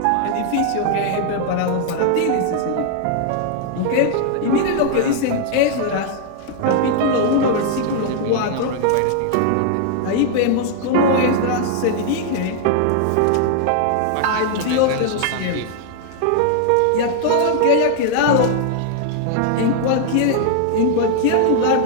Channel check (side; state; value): both; different; correlation 0.00